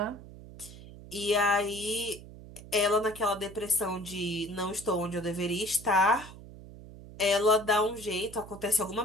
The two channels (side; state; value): right; noise; hum, 16 dB below the sound